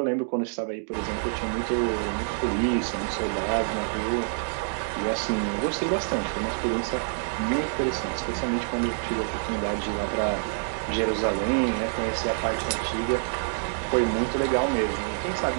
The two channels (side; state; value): left; silent; digital silence